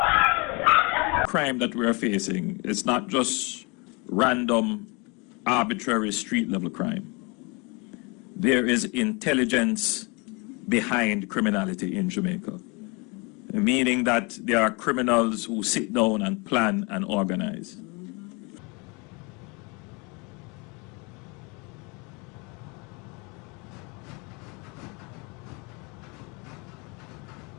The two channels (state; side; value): quieter; right; 29.8 dB